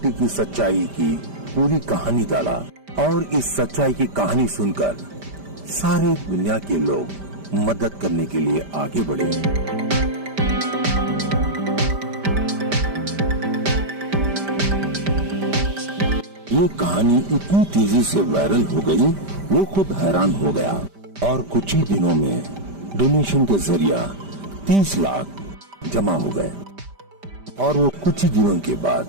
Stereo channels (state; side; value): late; left; 5.0 ms